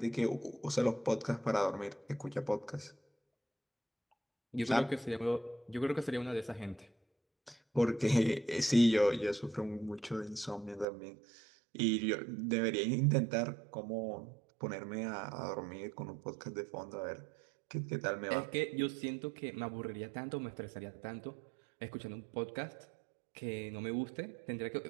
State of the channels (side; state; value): left; drops out; at 10.9 s